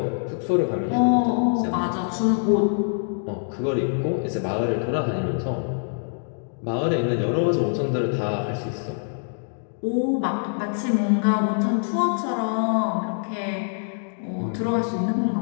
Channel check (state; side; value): silent; right; digital silence